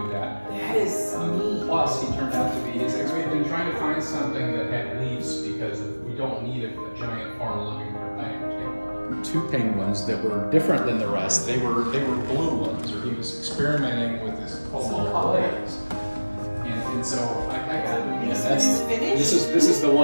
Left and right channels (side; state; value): both; inverted; correlation -1.00